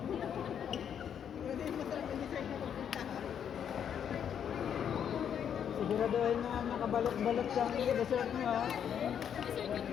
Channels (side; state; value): right; quieter; 8.5 dB